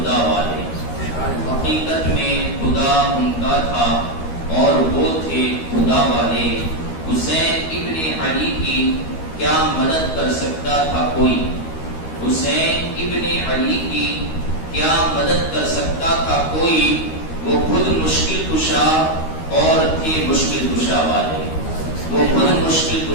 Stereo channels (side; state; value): right; late; 13 ms